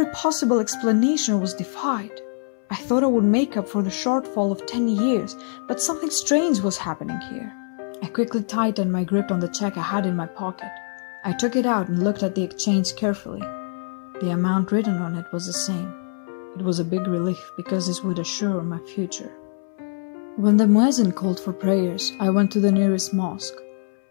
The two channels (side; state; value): right; silent; 63 dB below the other